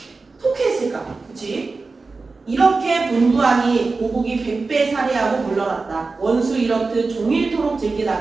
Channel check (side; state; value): left; quieter; 3.9 dB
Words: 통쾌했을까? 그치? 이렇게 분부하니 보국이 100배 살해하고 물러났다. 원수 이렇듯 종일토록